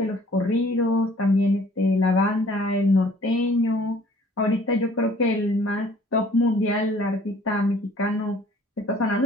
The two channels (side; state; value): both; normal; correlation 0.55